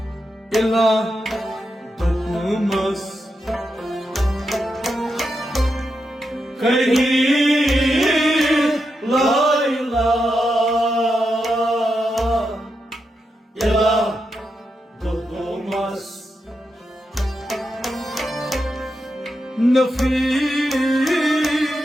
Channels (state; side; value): normal; both; correlation 0.86